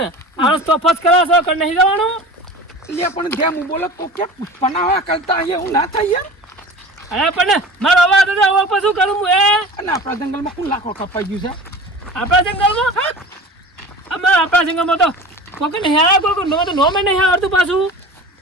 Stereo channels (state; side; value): normal; both; correlation 0.37